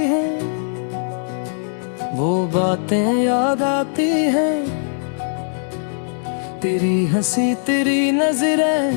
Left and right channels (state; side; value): silent; right; digital silence